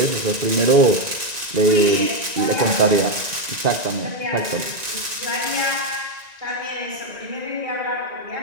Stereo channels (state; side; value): late; left; 1.9 ms